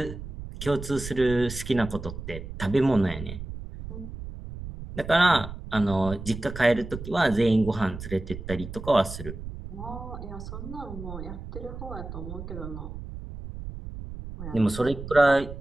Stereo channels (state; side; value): noise; right; rumble, 10 dB below the sound